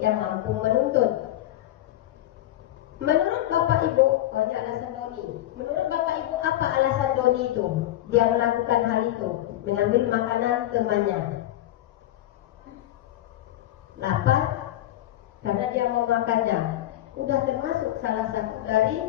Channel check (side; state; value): right; quieter; 14.1 dB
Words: mampu menuntut. Menurut Bapak Ibu, ini alasan Doni. Menurut Bapak Ibu, apa alasan Doni itu? Dia melakukan hal itu, mengambil makanan temannya. Lapar karena dia mau makannya. sudah termasuk salah satu